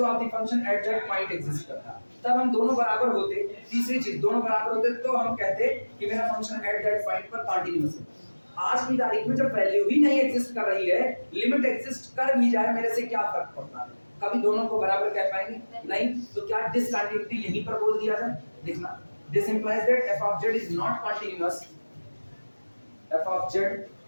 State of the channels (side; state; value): both; inverted; correlation -1.00